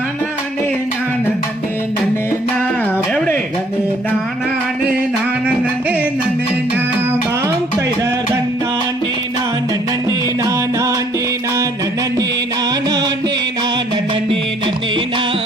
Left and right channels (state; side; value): normal; both; correlation 0.62